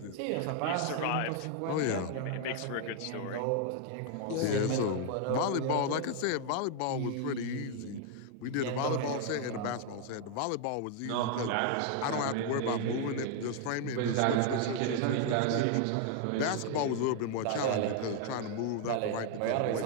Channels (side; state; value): both; different; correlation 0.00